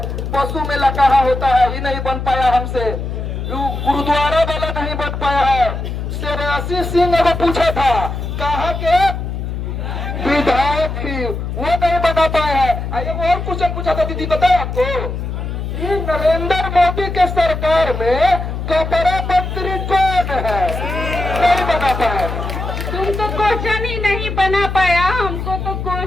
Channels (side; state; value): left; noise; hum, 5 dB below the sound